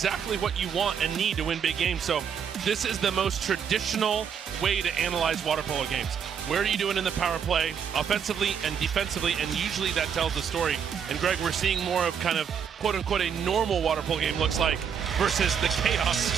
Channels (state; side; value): quieter; left; 7.5 dB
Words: what you want and need to win big games. So this is the most traditional way to analyze water polo games. Where are you doing in the power play, offensively and defensively, and usually that tells the story. And Greg, we're seeing more of kind of quote-unquote a normal water polo game looks like versus the chaos